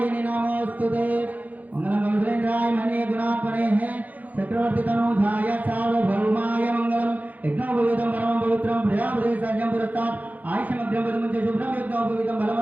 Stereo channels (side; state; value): left; late; 0.079 ms